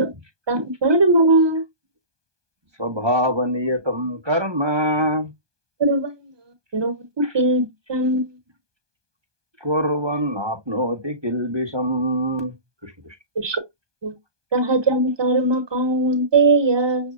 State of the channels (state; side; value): late; left; 1.2 ms